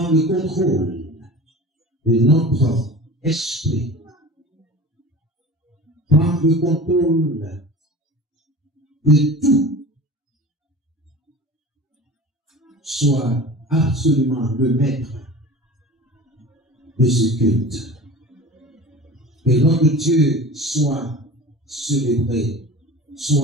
le contrôle de notre esprit. Prends le contrôle de tout. Sois absolument le maître de ce culte. Que notre Dieu soit célébré,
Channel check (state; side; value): normal; both; correlation 0.37